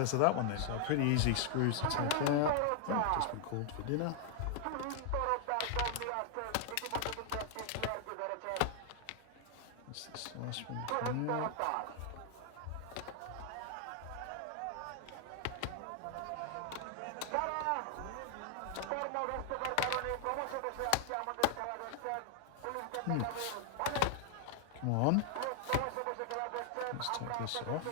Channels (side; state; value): both; different; correlation 0.00